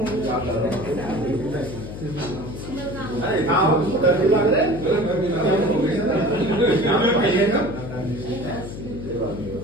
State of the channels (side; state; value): left; noise; hum, 10 dB below the sound